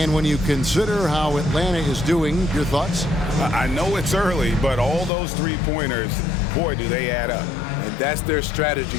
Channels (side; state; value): right; drops out; at 5.1 s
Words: when you consider how Atlanta is doing, your thoughts? I know it's early, but all those three-pointers, boy, do they add up. And that's their strategy.